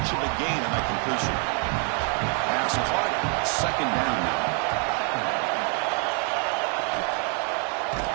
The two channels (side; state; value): left; quieter; 40.0 dB